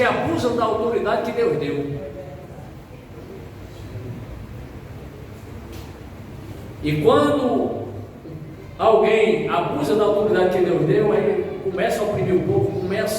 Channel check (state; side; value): identical; both; correlation 1.00